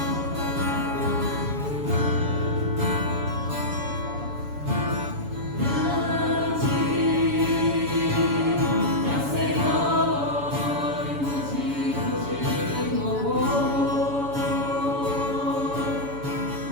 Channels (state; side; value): late; left; 7.0 ms